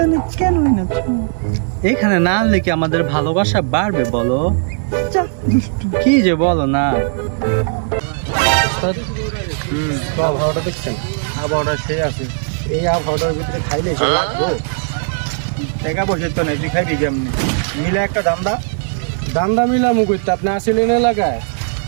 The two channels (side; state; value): left; silent; digital silence